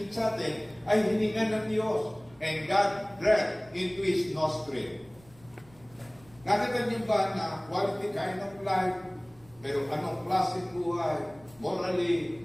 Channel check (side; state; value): right; noise; rumble, 26 dB below the sound